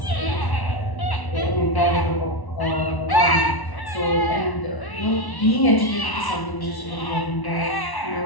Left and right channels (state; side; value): late; right; 1.1 ms